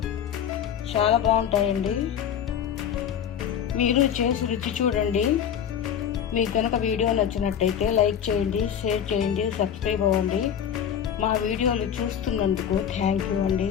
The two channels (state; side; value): quieter; right; 8.8 dB